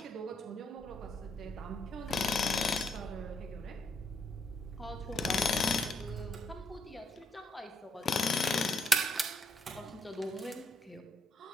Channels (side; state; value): both; normal; correlation 0.77